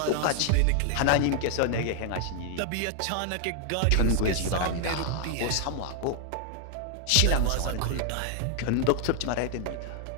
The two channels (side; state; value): both; different; correlation 0.00